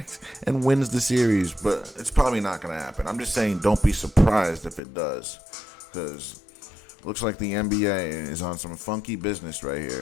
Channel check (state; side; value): drops out; right; at 4.8 s